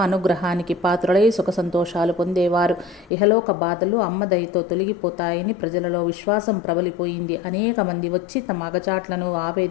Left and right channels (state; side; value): drops out; right; at 3.1 s